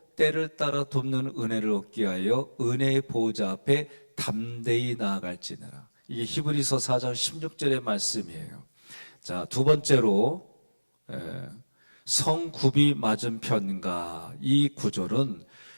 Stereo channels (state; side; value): inverted; both; correlation -1.00